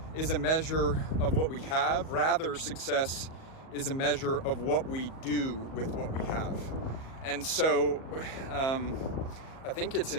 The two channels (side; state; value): right; late; 38 ms